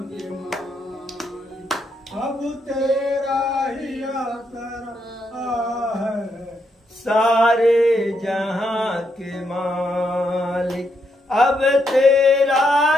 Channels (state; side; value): normal; both; correlation 0.79